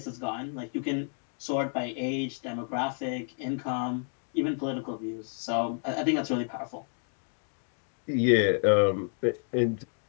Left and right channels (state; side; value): silent; right; 58 dB below the other